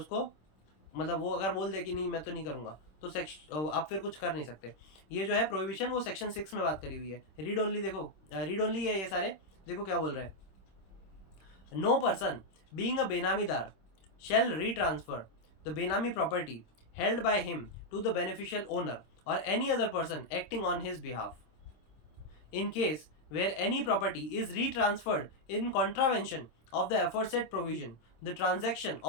मतलब वो अगर बोल दे कि नहीं मैं तो नहीं करूँगा, तो आप फिर कुछ कर नहीं सकते। ये जो है प्रोहिबिशन वो सेक्शन 6 में बात करी हुई है। रीड ओनली देखो, रीड ओनली है ये सारे। देखो क्या बोल रहे हैं, no person being a benamidar shall retransfer the benami property held by him to the beneficial owner or any other person acting on his behalf. In case where any property is retransferred in contravention of the aforesaid provision, the transaction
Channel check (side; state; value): right; late; 26 ms